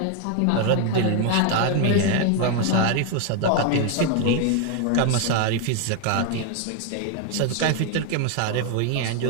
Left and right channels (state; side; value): different; both; correlation 0.01